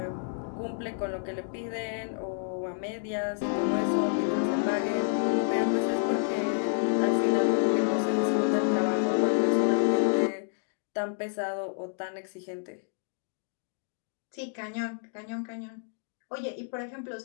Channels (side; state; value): right; silent; digital silence